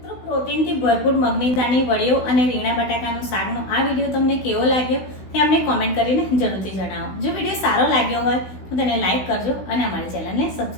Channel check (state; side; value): late; right; 16 ms